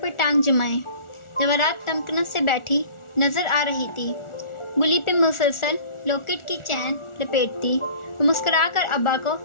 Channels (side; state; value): right; late; 1.4 ms